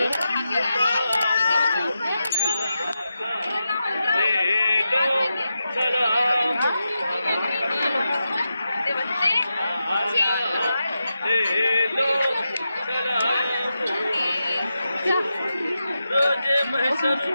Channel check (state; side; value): inverted; both; correlation -0.89